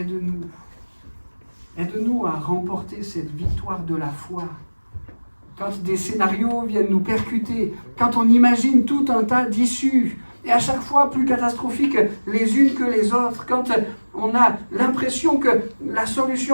Aide-nous à remporter cette victoire de la foi. Quand des scénarios viennent nous percuter, quand on imagine tout un tas d'issues, et à chaque fois plus catastrophiques les unes que les autres, quand on a l'impression que la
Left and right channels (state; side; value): inverted; both; correlation -1.00